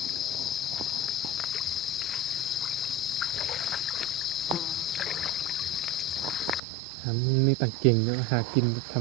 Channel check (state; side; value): drops out; left; at 6.6 s